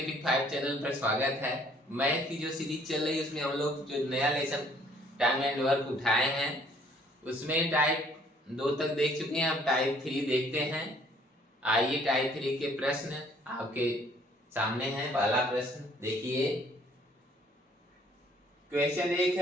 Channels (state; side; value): normal; both; correlation 0.61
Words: 5 चैनल पर स्वागत है। मैथ की जो सीरीज चल रही है उसमें हम लोग जो नया लेसन टाइम एंड वर्क उठाए हैं उसमें टाइप 2 तक देख चुके हैं। अब टाइप 3 देखते हैं। आइए टाइप 3 के प्रश्न आपके सामने हैं। पहला प्रश्न देखिए। क्वेश्चन 1